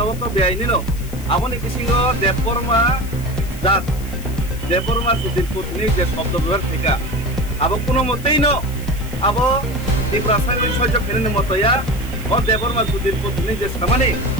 to beaini no aboni kisingo deporma jat Deporma sudir putni je শব্দ ব্যবহার থেকে আবো কোনো মতেই ন আবো এই রাসায়নিক সহ্য ফেরেন মতয়া ও দেবরমা সুদির পত্নী যে সমানে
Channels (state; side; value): noise; left; hiss, 18 dB below the sound